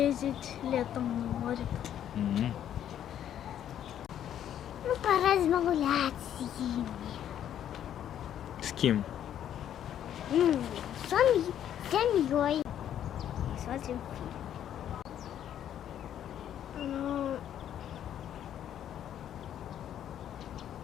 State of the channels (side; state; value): right; quieter; 10.4 dB